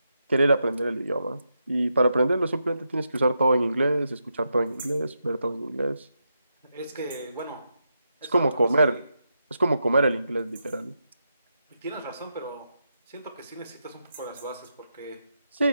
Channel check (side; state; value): both; inverted; correlation -0.85